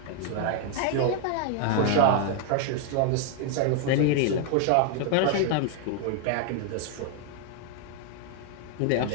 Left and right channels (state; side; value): different; both; correlation 0.00